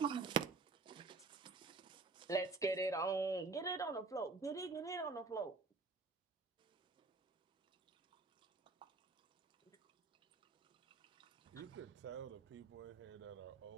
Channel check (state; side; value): quieter; left; 3.9 dB